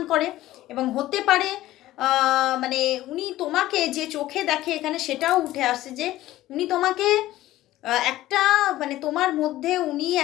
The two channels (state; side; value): quieter; right; 15.4 dB